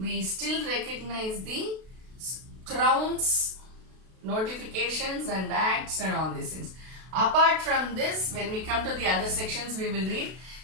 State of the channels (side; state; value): left; late; 32 ms